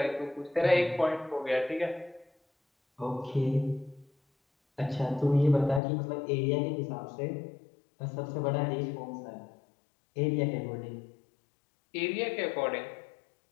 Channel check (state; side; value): drops out; right; at 5.8 s